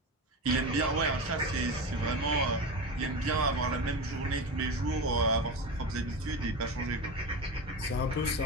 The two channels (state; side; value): normal; both; correlation 0.23